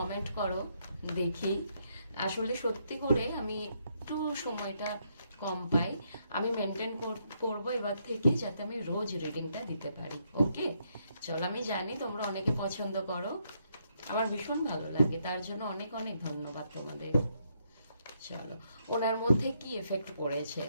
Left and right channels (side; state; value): both; inverted; correlation -0.75